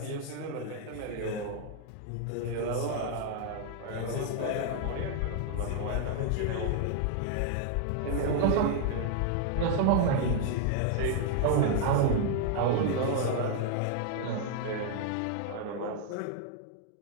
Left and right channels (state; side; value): different; both; correlation 0.00